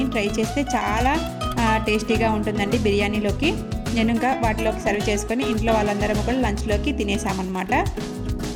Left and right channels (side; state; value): both; identical; correlation 1.00